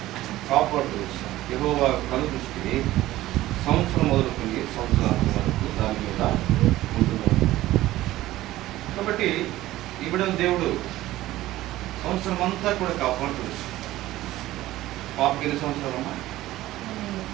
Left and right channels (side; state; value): left; quieter; 15.9 dB